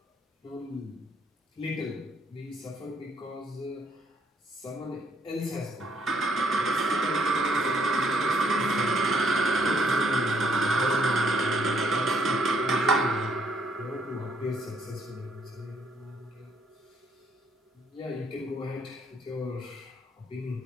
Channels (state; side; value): normal; both; correlation 0.70